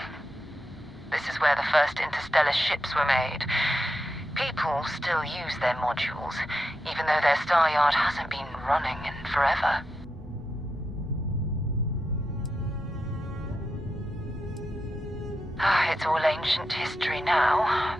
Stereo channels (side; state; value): both; normal; correlation 0.87